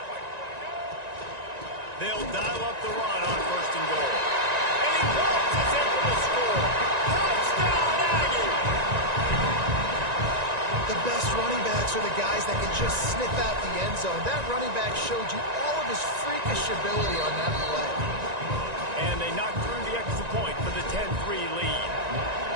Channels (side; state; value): left; late; 1.9 ms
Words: They'll dial up the run on 1st and goal. And he waltzes in for the score. Touchdown, Aggie! The best running backs are the guys that can just sniff out the end zone. That running back showed you all of his freakish ability on that play. And they knock through the extra point for the 10-3 lead.